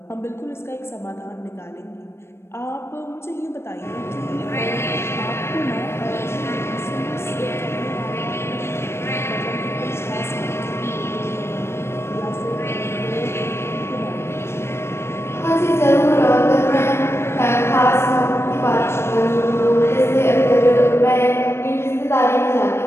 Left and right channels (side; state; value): right; late; 0.12 ms